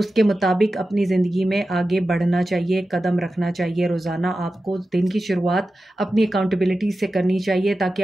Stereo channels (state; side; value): normal; both; correlation 0.93